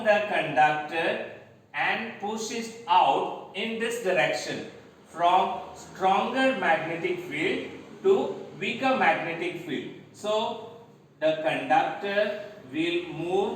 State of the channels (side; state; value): both; identical; correlation 1.00